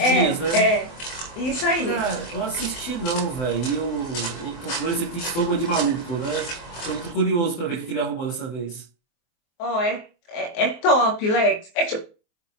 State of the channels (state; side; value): late; right; 24 ms